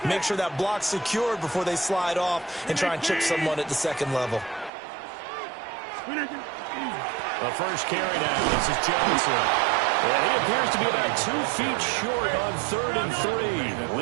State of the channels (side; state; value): left; drops out; at 4.7 s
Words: make sure that block's secured before they slide off and try and chip someone at the second level. The first carry now. This is Johnson. And he appears to be about 2 feet short on 3rd and 3.